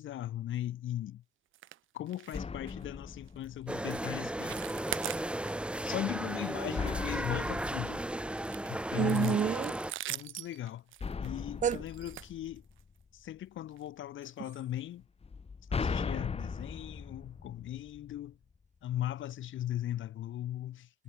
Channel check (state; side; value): normal; both; correlation 0.56